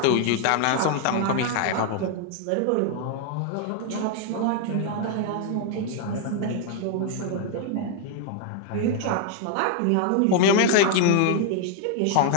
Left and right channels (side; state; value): both; different; correlation 0.00